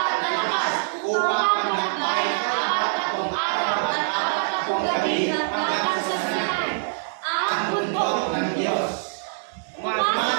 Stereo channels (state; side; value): silent; left; 57 dB below the other